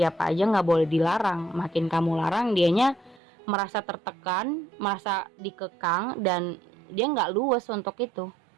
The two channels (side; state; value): left; drops out; at 3.2 s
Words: aja nggak boleh dilarang. Makin kamu larang, dianya merasa tertekan, merasa dikekang, dan dia nggak luwes untuk itu.